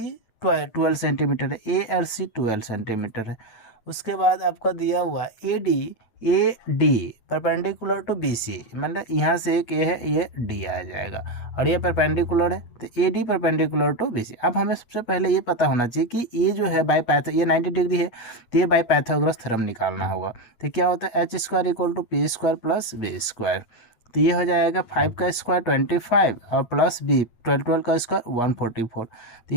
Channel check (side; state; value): right; late; 8.4 ms